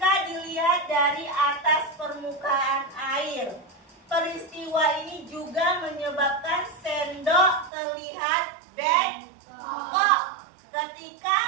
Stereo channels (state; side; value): drops out; left; at 7.7 s